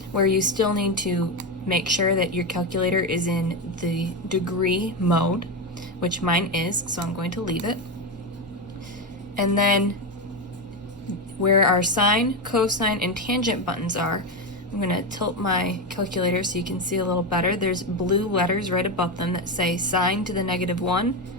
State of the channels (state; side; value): normal; both; correlation 0.12